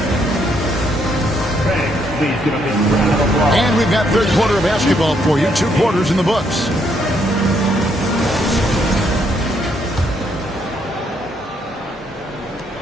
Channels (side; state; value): both; normal; correlation 0.73